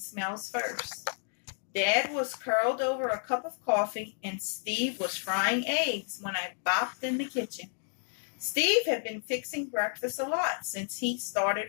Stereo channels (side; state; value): right; silent; 57 dB below the other